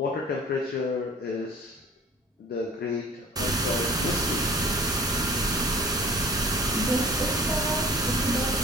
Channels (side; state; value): both; normal; correlation 0.47